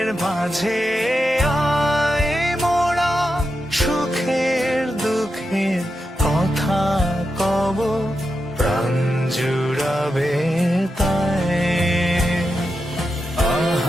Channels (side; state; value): both; normal; correlation 0.88